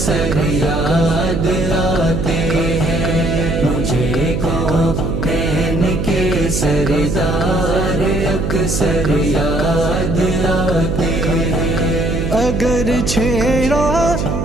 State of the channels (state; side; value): noise; right; hum, 1 dB below the sound